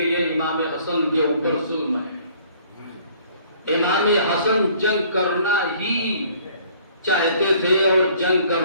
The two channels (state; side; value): inverted; both; correlation -0.57